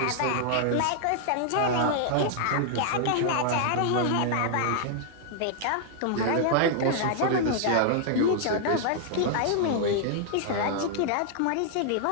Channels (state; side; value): different; both; correlation -0.01